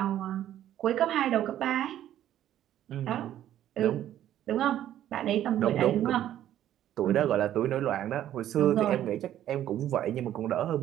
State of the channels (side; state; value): left; quieter; 11.9 dB